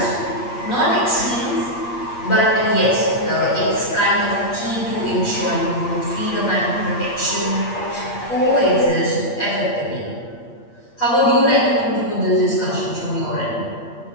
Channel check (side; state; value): right; late; 8.6 ms